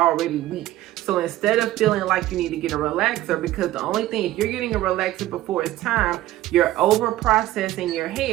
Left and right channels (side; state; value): left; quieter; 15.4 dB